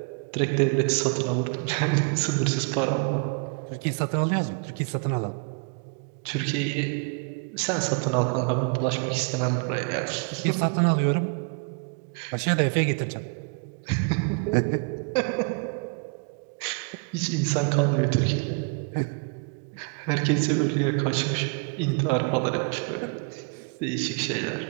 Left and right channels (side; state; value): left; quieter; 34.8 dB